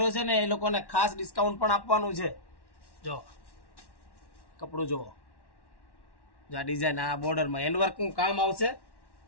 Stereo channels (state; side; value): late; right; 1.1 ms